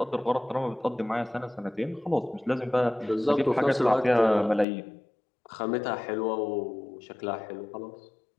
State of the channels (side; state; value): right; drops out; at 4.7 s